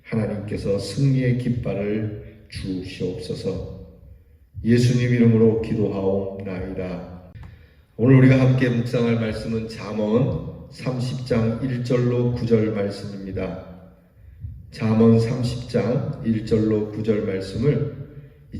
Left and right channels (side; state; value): both; identical; correlation 1.00